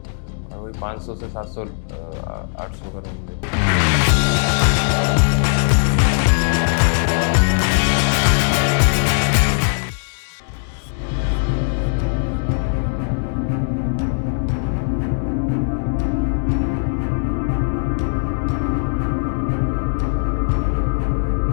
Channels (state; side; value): silent; right; digital silence